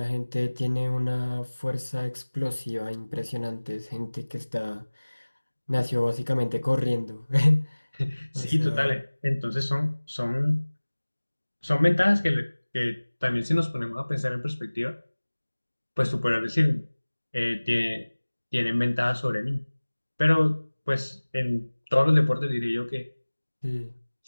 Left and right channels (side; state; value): both; inverted; correlation -1.00